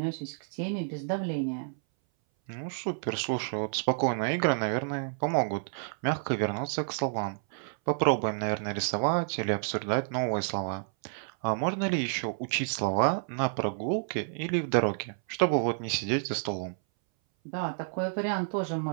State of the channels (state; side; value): silent; left; 58 dB below the other